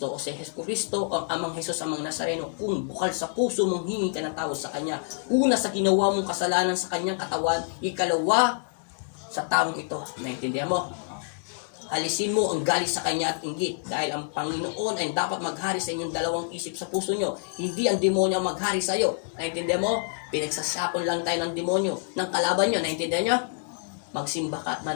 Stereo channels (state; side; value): silent; right; digital silence